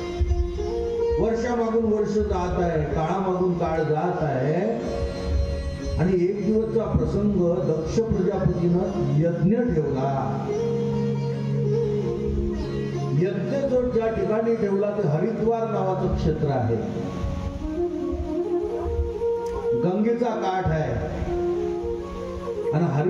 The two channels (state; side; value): identical; both; correlation 1.00